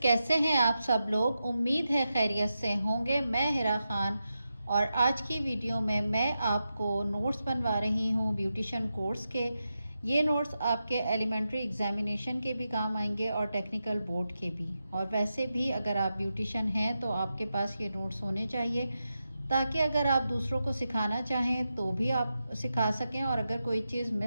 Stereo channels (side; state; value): both; inverted; correlation -0.89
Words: हैं आप सब लोग। उम्मीद है खैरियत से होंगे। मैं हिरा खान और आज की वीडियो में मैं आपको नोट्स बनवा रही हूं ब्यूटिशियन कोर्स के। ये नोट्स आपके एलिमेंट्री एग्जामिनेशन के भी काम आएंगे और टेक्निकल बोर्ड के भी। और वैसे भी अगर आप ब्यूटिशियन हैं तो आपके पास ये नोट्स होने चाहिए, ताकि अगर आप दूसरों को सिखाना चाहें तो भी आप सिखा सकें, और अगर कोई चीज़